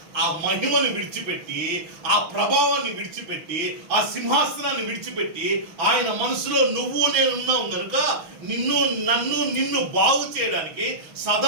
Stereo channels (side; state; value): left; late; 6.2 ms